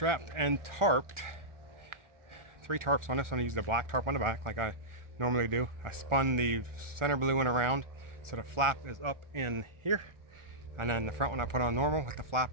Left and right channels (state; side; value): late; left; 1.4 ms